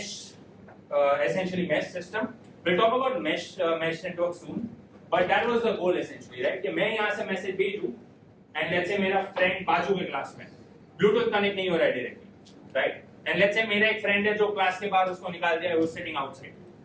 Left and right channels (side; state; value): both; identical; correlation 1.00